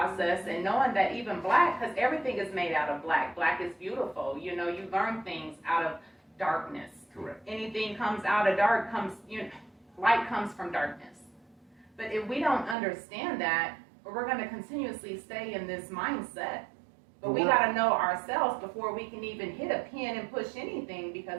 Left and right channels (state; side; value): drops out; left; at 12.8 s